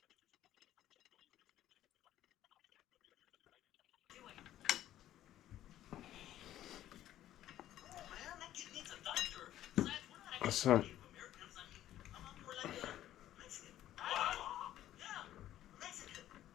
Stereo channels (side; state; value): right; quieter; 12.8 dB